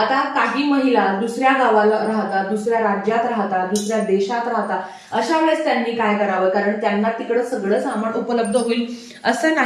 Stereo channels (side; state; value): both; identical; correlation 1.00